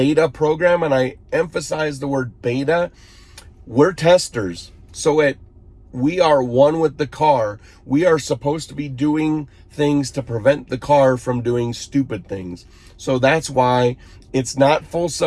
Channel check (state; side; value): identical; both; correlation 1.00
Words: program, and I emphasize the word beta. We're testers, so we are one with the car. We are supposed to be doing things to prevent the car from doing stupid things. So that's why it's not full